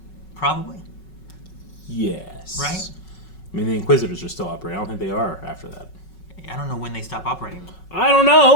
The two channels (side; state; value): right; late; 5.4 ms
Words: Probably. Yes. Right? I mean, the Inquisitors are still operating. I don't think they are after that. I don't know when they stop operating. I don't